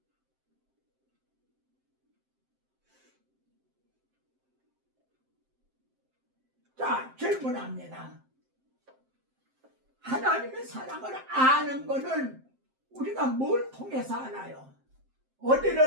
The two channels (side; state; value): left; late; 7.6 ms